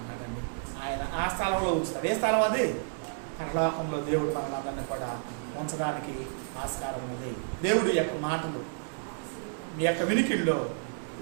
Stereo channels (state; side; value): silent; left; digital silence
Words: ఆయన ఆ స్థలంలో ఉంచుతాడు. ఏ స్థలం అది? పరలోకంలో దేవుడు మనలందరినీ కూడా ఉంచడానికి ఆస్కారం ఉంది. దేవుడి యొక్క మాటలు మీ యొక్క వినికిల్లో